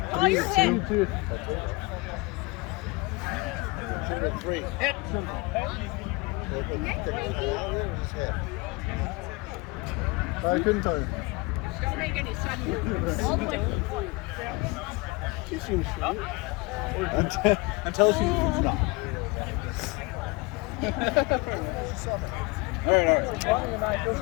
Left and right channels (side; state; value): right; quieter; 25.1 dB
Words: Oh, you're hit. 3. I couldn't tell you. Don't make any sudden movements. All the way to the point. She seems straight. Until she's not.